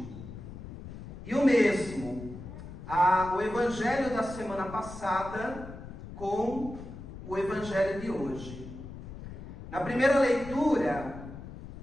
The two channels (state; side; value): noise; left; rumble, 12 dB below the sound